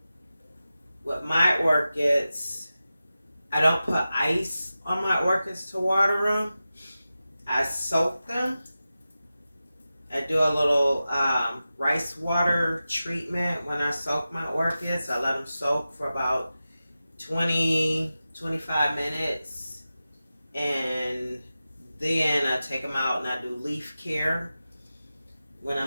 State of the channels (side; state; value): both; inverted; correlation -0.94